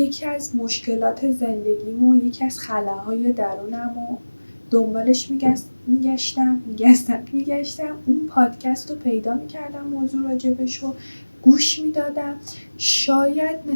از مشکلات زندگیمو، یکی از خلاهای درونمو دنبالش میگشتم اون پادکست رو پیدا میکردم، موضوع راجبشو گوش میدادم. شاید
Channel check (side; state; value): both; inverted; correlation -1.00